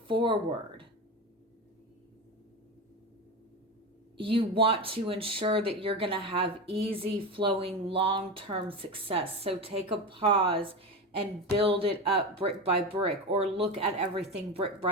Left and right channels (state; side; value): normal; both; correlation 0.21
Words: forward. You want to ensure that you're going to have easy flowing long-term success. So take a pause and build it up brick by brick, or look at everything brick